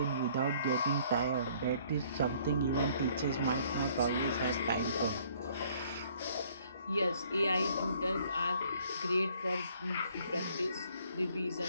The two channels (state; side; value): inverted; both; correlation -0.61